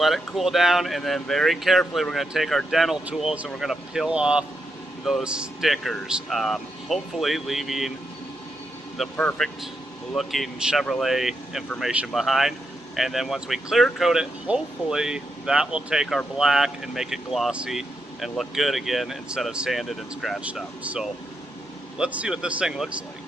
it cool down, and then very carefully we're gonna take our dental tools and we're gonna peel off those stickers, hopefully leaving the perfect looking Chevrolet information behind. And then once we clear coat it, hopefully that will take our black and make it glossy and look good again instead of sanded and scratched up. So let's see what this thing looks like.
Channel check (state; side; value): normal; both; correlation 0.83